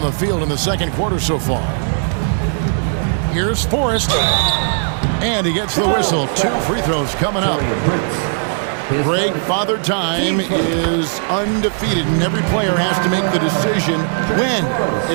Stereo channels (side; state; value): left; silent; digital silence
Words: the field in the second quarter so far. Here's Forrest. And he gets the whistle. 2 free throws coming up. Greg, Father Time is undefeated, and every player has to make the decision when